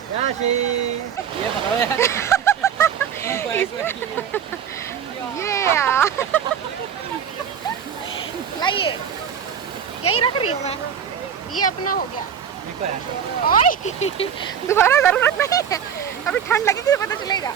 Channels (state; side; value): quieter; left; 8.1 dB